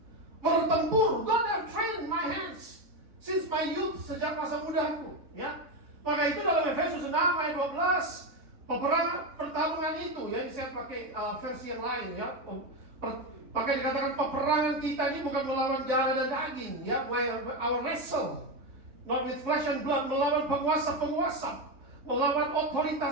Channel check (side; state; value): left; late; 3.6 ms